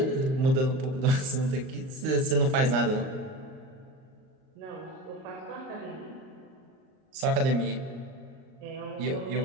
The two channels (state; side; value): late; left; 38 ms